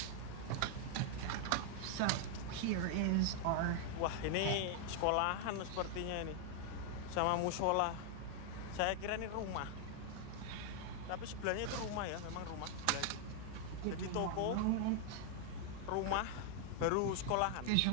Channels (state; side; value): different; both; correlation 0.00